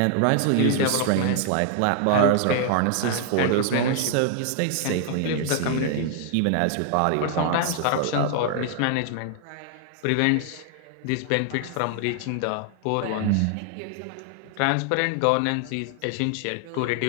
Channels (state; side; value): different; both; correlation 0.00